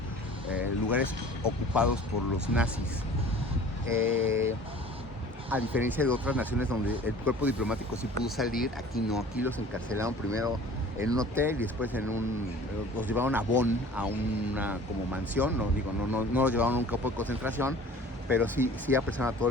lugares ocupados por los nazis. A diferencia de otras naciones donde el cuerpo diplomático sí pudo salir, aquí no, aquí los encarcelaron primero en un hotel y después los llevaron a Bonn, a una como mansión, no los llevaron a un campo de concentración, pero sí apresaron a todo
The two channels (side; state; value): both; normal; correlation 0.45